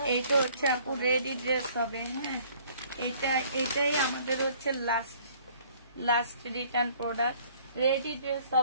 এইটা হচ্ছে আপু রেডি ড্রেস হবে। হ্যাঁ এটাই আমাদের হচ্ছে last return product. Ready dress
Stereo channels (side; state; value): both; inverted; correlation -0.57